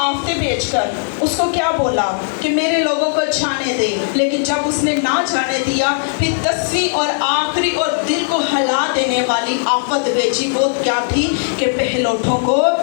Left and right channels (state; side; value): silent; right; digital silence